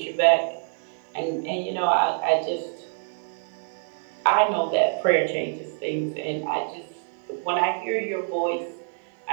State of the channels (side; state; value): left; silent; digital silence